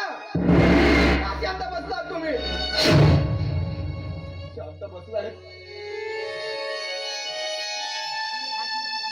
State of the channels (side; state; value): both; identical; correlation 1.00